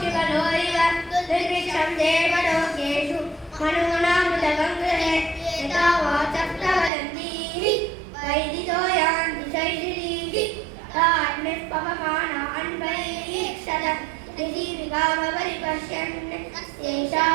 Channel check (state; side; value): drops out; left; at 6.9 s